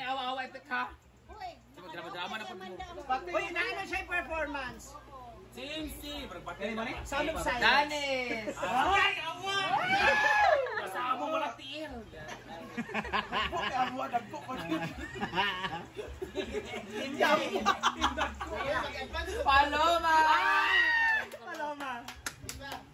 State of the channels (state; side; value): identical; both; correlation 1.00